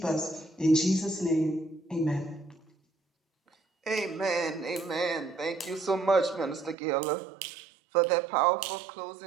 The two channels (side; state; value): left; drops out; at 6.8 s